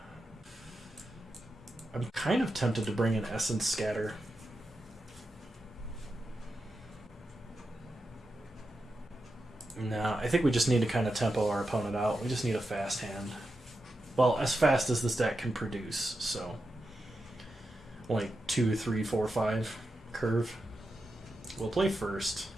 I'm kind of tempted to bring in Essence Scatter. No, I think we just need to kind of tempo our opponent out. We just need a fast hand. Well, as fast as this deck can produce, so... Only 2, 3, 4, 5 curve. We'll play first.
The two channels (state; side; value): normal; both; correlation 0.89